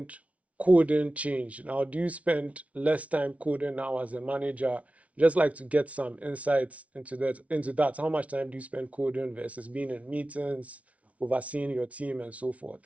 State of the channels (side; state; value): left; late; 0.066 ms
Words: coding changed? Now, do you spend less time coding now as a manager? Just like to get some insights into that. How much time do you spend coding versus being in meetings, overseeing your team, and so forth?